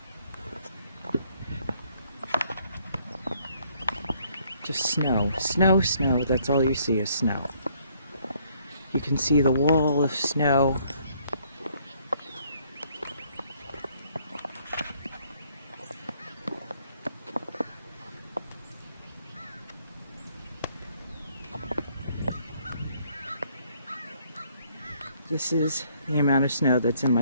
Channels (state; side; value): inverted; both; correlation -0.66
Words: Just snow, snow, snow. That's all you see is snow. You can see the wall of snow. This is the amount of snow that's in